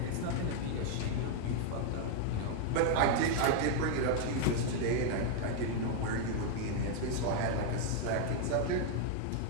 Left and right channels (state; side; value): different; both; correlation 0.00